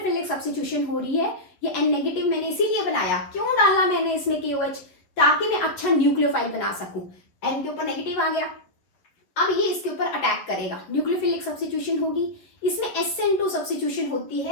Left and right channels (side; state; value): right; late; 11 ms